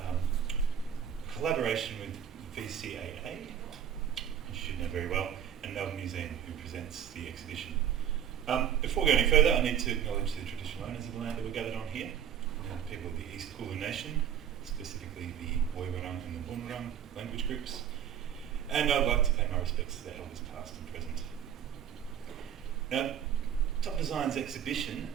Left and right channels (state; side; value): quieter; left; 9.2 dB